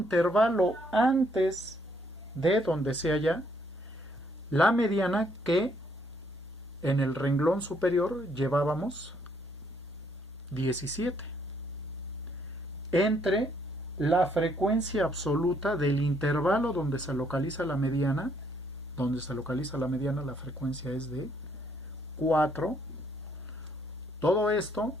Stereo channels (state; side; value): normal; both; correlation 0.69